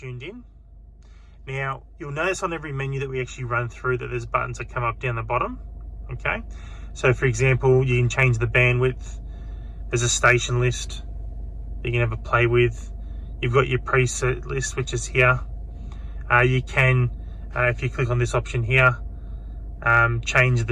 in. Now, you'll notice on every menu that we actually run through that there's buttons that come up down the bottom. Okay, so for example, you can change the bandwidth. There's a station list you can have a play with. You've got your preset list, which is here. You can, if you click on this option here, change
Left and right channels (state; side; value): identical; both; correlation 1.00